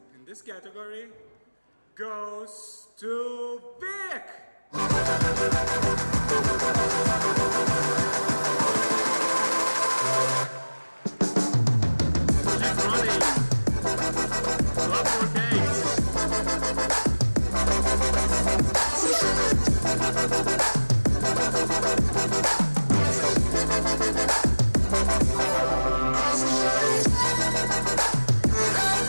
in this category goes to Vic. Keep running. Drop more cakes.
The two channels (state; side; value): inverted; both; correlation -1.00